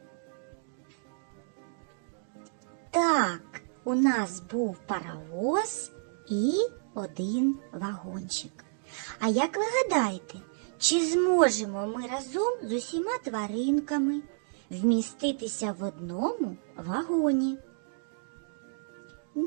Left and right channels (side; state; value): left; silent; digital silence